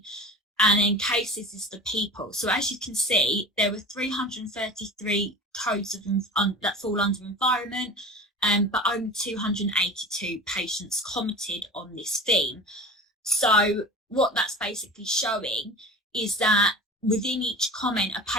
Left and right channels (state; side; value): normal; both; correlation 0.36